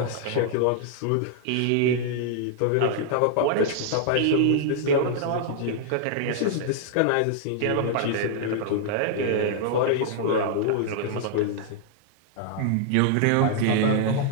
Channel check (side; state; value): both; different; correlation -0.01